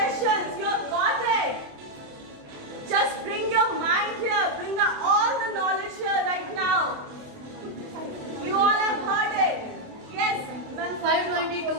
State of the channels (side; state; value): left; late; 28 ms